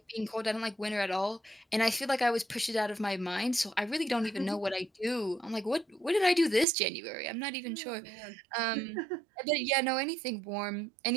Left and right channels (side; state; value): left; drops out; at 6.7 s